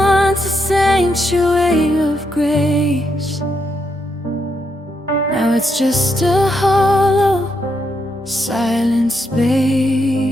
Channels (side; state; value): both; normal; correlation 0.80